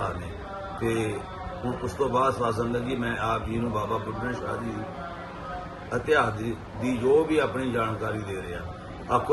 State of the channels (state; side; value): identical; both; correlation 1.00